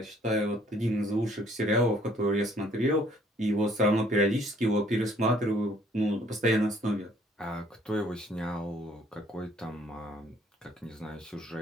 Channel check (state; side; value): normal; both; correlation 0.61